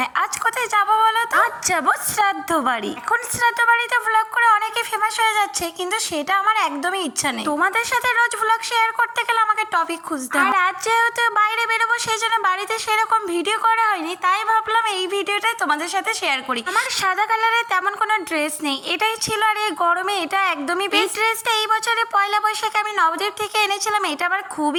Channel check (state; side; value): identical; both; correlation 1.00